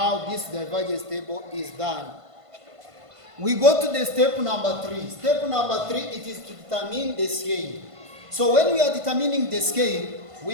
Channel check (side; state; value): left; late; 1.5 ms